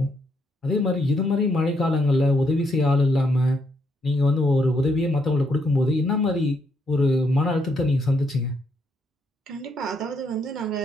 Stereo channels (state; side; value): normal; both; correlation 0.75